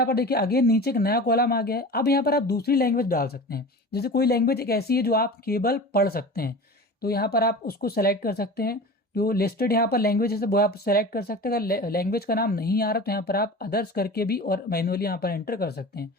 पर देखिए अगेन नीचे एक नया कॉलम आ गया है। अब यहाँ पर आप दूसरी लैंग्वेज डाल सकते हैं, जैसे कोई लैंग्वेज एक ऐसी है जो आप केवल पढ़ सकते हैं, तो यहाँ पर आप उसको सेलेक्ट कर सकते हैं। जो लिस्टेड यहाँ पर लैंग्वेज है वो आप सेलेक्ट कर सकते हैं। अगर लैंग्वेज का नाम नहीं आ रहा तो यहाँ पर आप अदर्स करके भी और मैनुअली यहाँ पर एंटर कर सकते हैं।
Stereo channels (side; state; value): both; normal; correlation 0.34